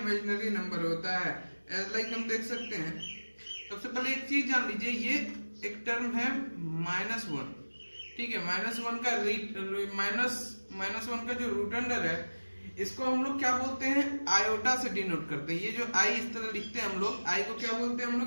नंबर होता है। लाइक हम देख सकते हैं। सबसे पहले एक चीज जान लीजिए, ये एक टर्म है -1। ठीक है। -1 का जो रूट अंडर है, इसको हम लोग क्या बोलते हैं? आयोटा से डिनोट करते हैं। ये जो आई इस तरह लिखते हैं हम लोग, आई को क्या बोलते हैं हम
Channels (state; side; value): inverted; both; correlation -1.00